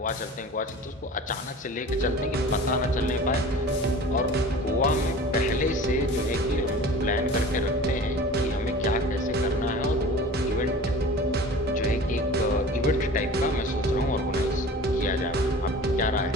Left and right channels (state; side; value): normal; both; correlation 0.40